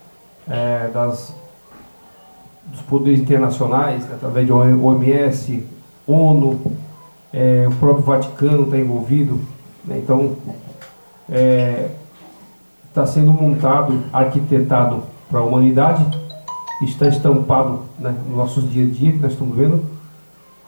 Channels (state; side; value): inverted; both; correlation -1.00